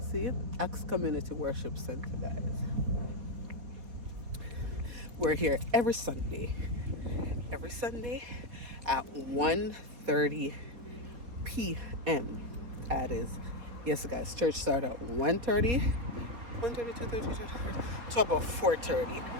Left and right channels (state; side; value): late; left; 4.2 ms